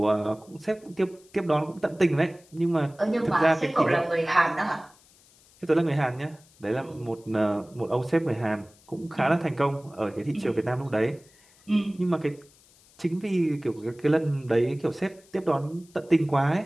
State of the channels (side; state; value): left; noise; hiss, 28 dB below the sound